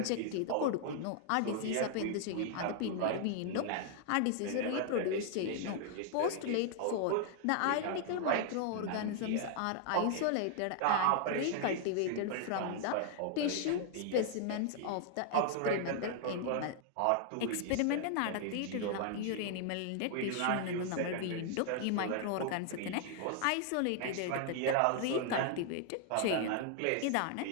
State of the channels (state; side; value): different; both; correlation 0.00